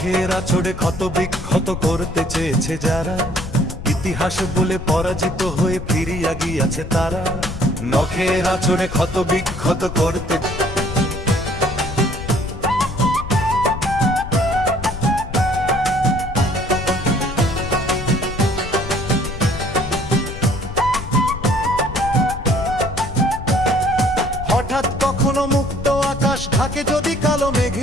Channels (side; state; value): left; noise; rumble, 9 dB below the sound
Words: নখের আঁচড়ে ক্ষত বিক্ষত করতে চেয়েছে যারা, ইতিহাস বলে পরাজিত হয়ে ফিরিয়া গিয়াছে তারা। নখের আঁচড়ে ক্ষত বিক্ষত করতে হঠাৎ কখনো মুক্ত আকাশ ঢাকে যদি কালো